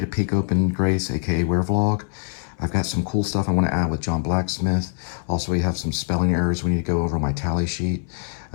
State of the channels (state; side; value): silent; right; 63 dB below the other